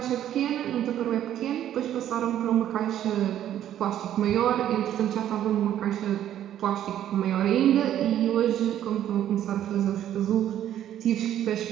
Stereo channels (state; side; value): quieter; left; 11.3 dB